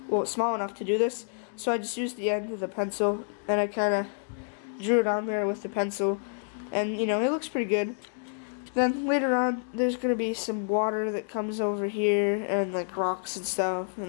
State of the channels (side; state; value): right; silent; digital silence